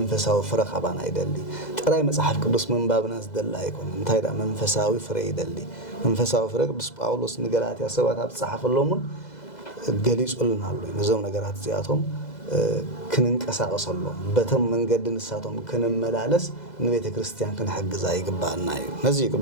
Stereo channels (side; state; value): right; late; 2.0 ms